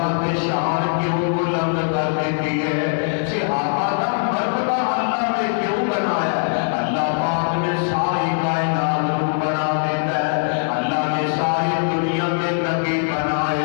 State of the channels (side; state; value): right; silent; digital silence